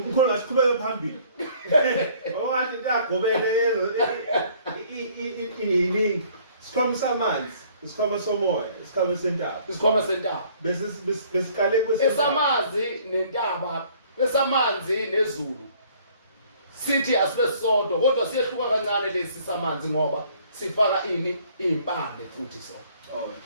ngasiqhubeke phambili awathi intagobele iningi sikhoma samanzi isikhoma somoya isikhoma sentaba isikhoma sentaba besiqale esamazi nentaba esamanzi nezulu sithi asibe sisodwa kodwa siyehluka kancane lesi samanzi ngoba sifaka impande futhi so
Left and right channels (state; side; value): inverted; both; correlation -0.58